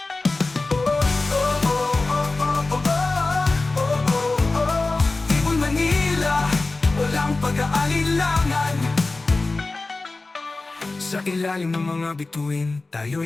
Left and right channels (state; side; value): quieter; right; 3.4 dB